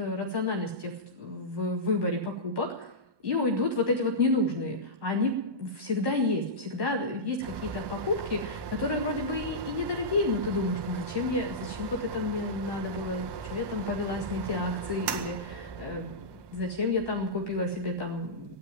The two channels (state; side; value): late; left; 1.2 ms